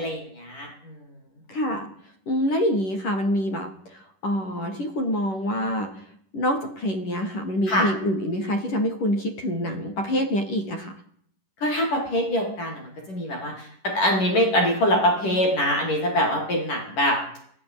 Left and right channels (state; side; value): late; right; 10 ms